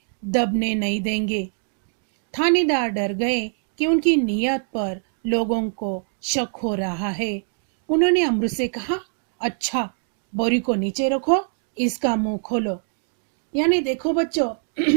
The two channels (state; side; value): silent; left; 57 dB below the other